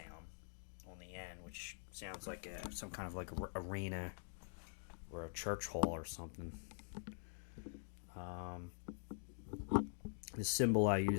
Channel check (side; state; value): right; silent; digital silence